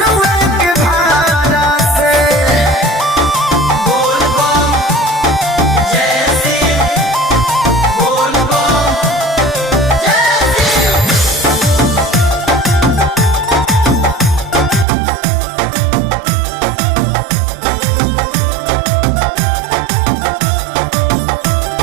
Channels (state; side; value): drops out; left; at 14.9 s